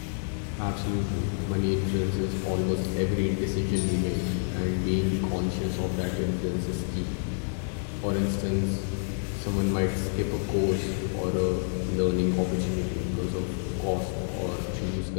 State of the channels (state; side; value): silent; right; digital silence